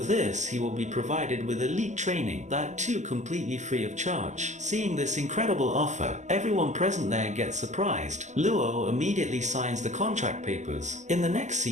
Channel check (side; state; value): left; late; 0.34 ms